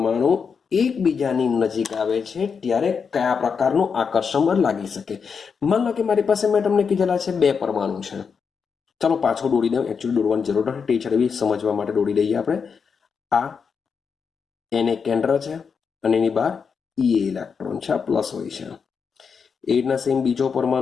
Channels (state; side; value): quieter; right; 6.0 dB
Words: એકબીજાની નજીક આવે છે ત્યારે કયા પ્રકારનું આકર્ષણ બળ લાગી શકે. માન લો કે મારી પાસે મેં તમને કીધેલા છે બે પરમાણુ છે. ચાલો પાછો દોડી દઉં, એકચ્યુઅલી દોડવાની જરૂર નથી, ટીચર એવી સમજવા માટે દોડી દઈએ આપણે. આ એને કેન્દ્ર છે અને એની બહાર ઈ ઇલેક્ટ્રોન છે, આ પ્લસ હોય છે. એ રીતના સેમ બીજો